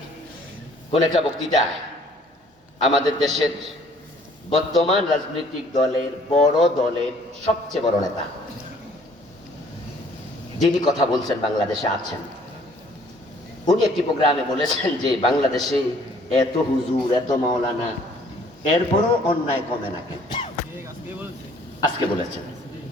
কোন একটা বক্তৃতা আমাদের দেশের বর্তমান রাজনৈতিক দলের বড় দলের সবচেয়ে বড় নেতা যিনি কথা বলছেন, বাংলাদেশে আছেন, উনি একটি প্রোগ্রামে বলেছেন যে বাংলাদেশে এত হুজুর, এত মাওলানা, এরপরও অন্যায় কমে না কেন? আজকে বলেছেন,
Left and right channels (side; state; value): both; normal; correlation 0.58